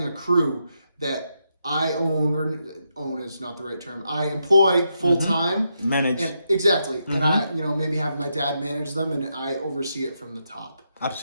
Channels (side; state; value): both; inverted; correlation -0.83